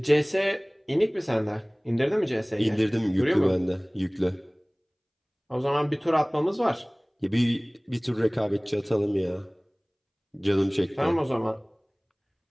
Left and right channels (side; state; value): both; identical; correlation 1.00